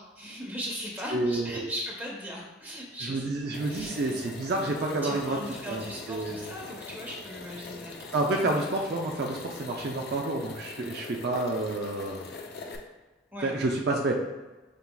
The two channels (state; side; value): normal; both; correlation 0.36